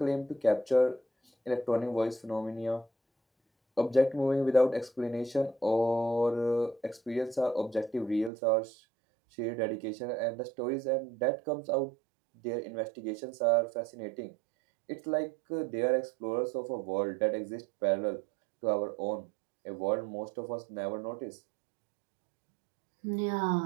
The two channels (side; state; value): left; drops out; at 8.3 s